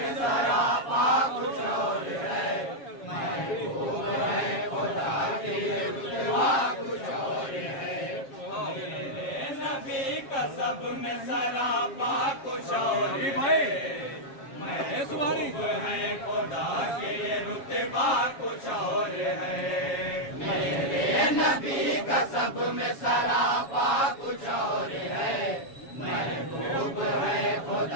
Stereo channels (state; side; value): late; right; 7.3 ms